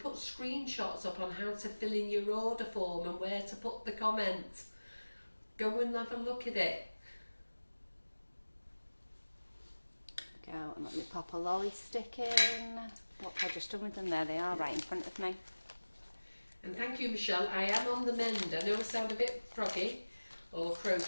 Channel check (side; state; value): both; inverted; correlation -1.00